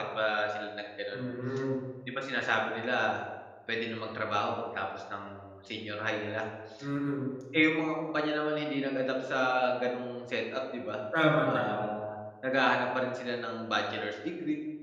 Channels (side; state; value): both; identical; correlation 1.00